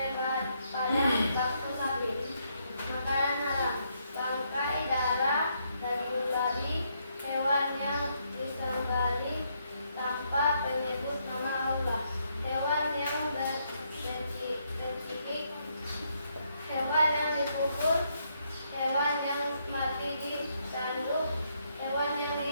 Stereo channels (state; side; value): inverted; both; correlation -0.75